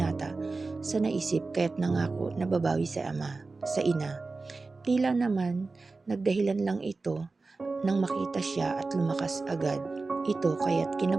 sa naisip kaya't nangako na babawi sa ina. Tila naman nagdahilan lang ito nang makita siya at lumakas agad ito kaya't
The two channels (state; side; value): quieter; left; 3.8 dB